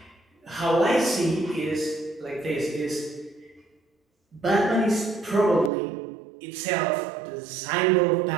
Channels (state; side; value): drops out; left; at 5.7 s